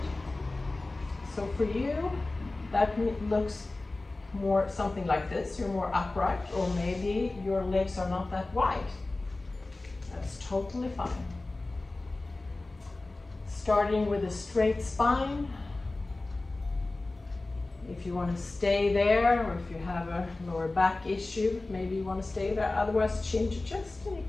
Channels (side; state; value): right; quieter; 3.1 dB